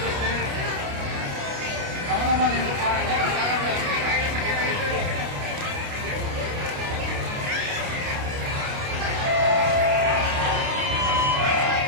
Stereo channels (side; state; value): left; late; 29 ms